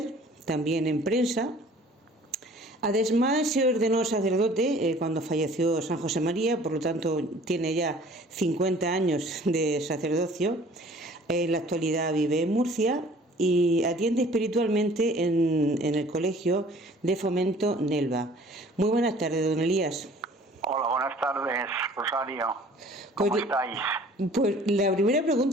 también en prensa. Además, se ordenó sacerdote cuando falleció San José María, por lo tanto tiene ya 50 años de sacerdocio. En la actualidad vive en Murcia y atiende espiritualmente en el Colegio de Fomento Nelva. Muy buenas tardes, don Elías. Hola, buenas tardes, Rosario. ¿Cómo estáis? Pues la primera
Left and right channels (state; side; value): normal; both; correlation 0.51